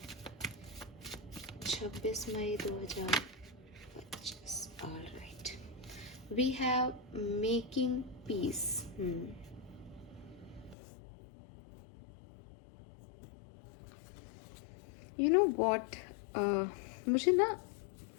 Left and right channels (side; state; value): right; drops out; at 10.8 s